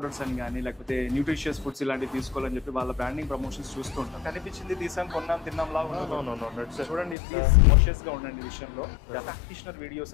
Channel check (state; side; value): drops out; right; at 7.2 s